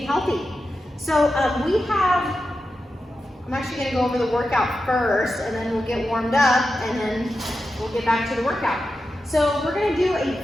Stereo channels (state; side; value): normal; both; correlation 0.90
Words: healthy. So I'm actually going to go over the workout first, and then we'll get warmed up, and then we'll get back to the workout. So we're going to do